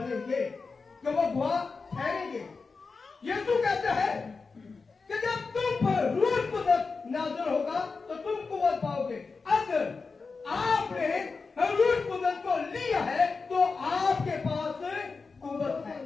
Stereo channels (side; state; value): right; quieter; 4.5 dB